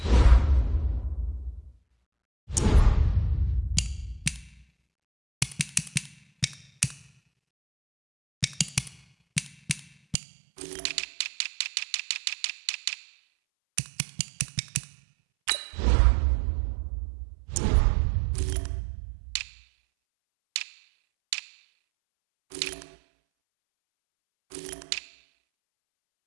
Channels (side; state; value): left; drops out; at 10.2 s